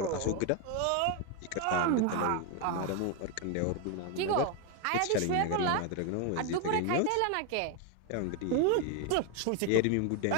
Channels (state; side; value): different; both; correlation 0.01